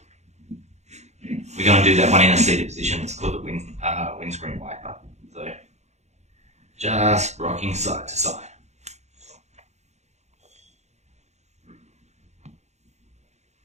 we're going to do that one in a seated position. It's called the windscreen wiper. So just rocking side to side.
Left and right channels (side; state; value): left; late; 0.33 ms